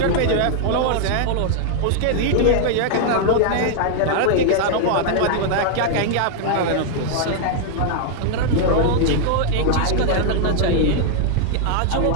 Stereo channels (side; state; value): both; different; correlation 0.00